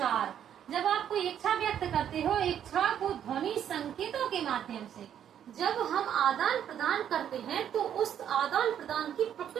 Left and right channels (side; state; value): left; quieter; 9.6 dB